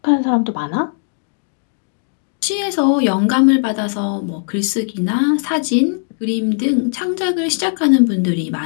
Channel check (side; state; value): right; silent; digital silence